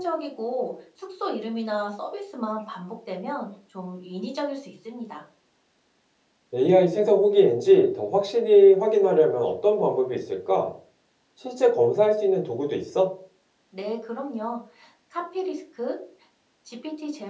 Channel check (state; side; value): identical; both; correlation 1.00